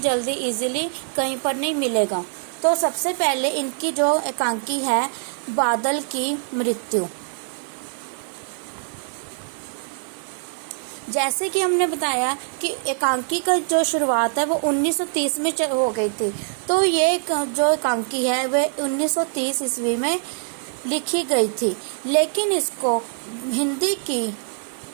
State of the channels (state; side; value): silent; left; digital silence